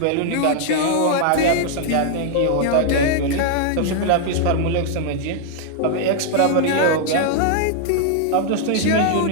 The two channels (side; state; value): both; different; correlation 0.00